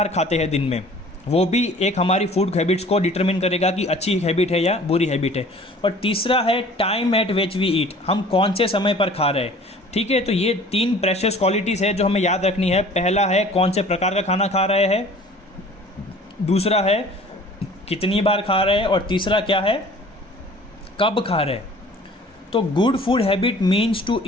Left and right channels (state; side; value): normal; both; correlation 0.49